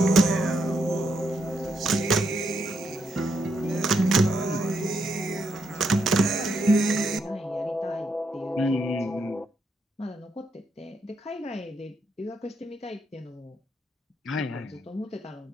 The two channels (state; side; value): normal; both; correlation 0.78